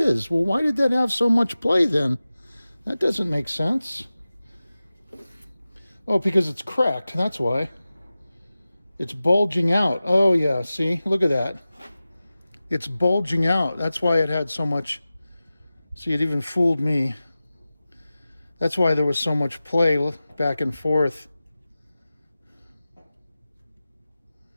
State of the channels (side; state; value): both; inverted; correlation -0.96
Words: Well, why did that have so much play then? That doesn't make sense. Oh, because it's cracked. That's why. It's bulging out. Oh, yeah, see? Look at that. It's bulging out. That's why it had so much. See, it even fooled me. That's why there was so much play back and forth.